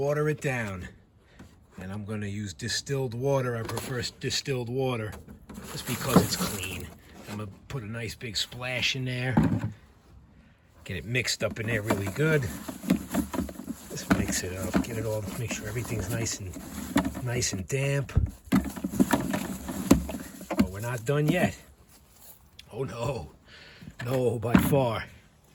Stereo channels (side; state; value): both; identical; correlation 1.00